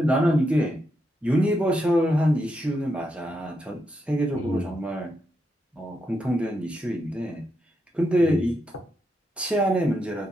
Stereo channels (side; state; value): both; normal; correlation 0.83